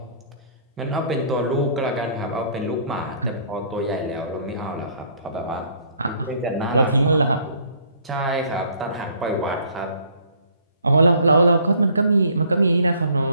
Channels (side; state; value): both; inverted; correlation -0.58